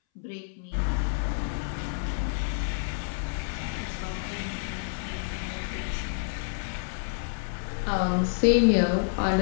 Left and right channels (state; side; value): silent; right; 59 dB below the other